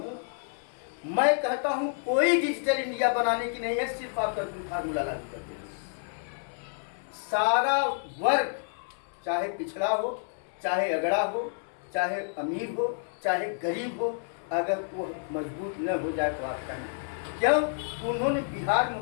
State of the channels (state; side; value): silent; right; digital silence